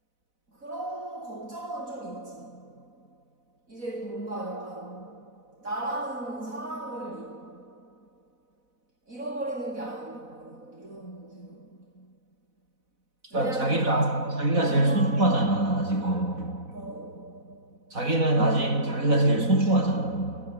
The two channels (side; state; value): left; late; 4.0 ms